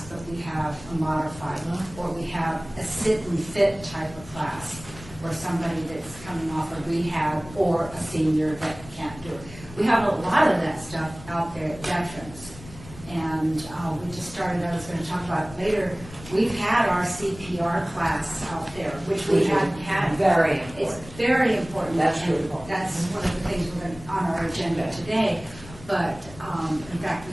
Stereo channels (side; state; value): left; noise; rumble, 17 dB below the sound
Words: but we have a modified one, or we have a sit and fit type of class, or somebody that's coming off of rehab, or a senior that can't do it. We have a lot of that stuff out there at Veterans. And we just started, I was going to talk about it later, we've had our CPR class out there, which we hadn't had. Very It's important. very important. That's and really important. That's one of the things we're going on our agenda today. But in fact,